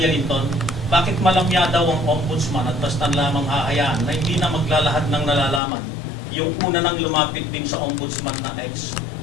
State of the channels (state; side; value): drops out; right; at 5.6 s